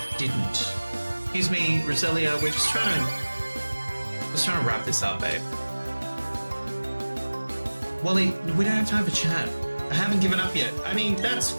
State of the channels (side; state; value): both; inverted; correlation -1.00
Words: didn't. Excuse me, Roselia, we're just trying to wrap this up, babe. Wally, we don't have time for chat. I haven't given up yet. I mean, that's